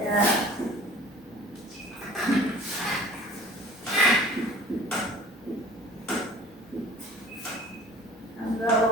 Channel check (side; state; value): both; normal; correlation 0.46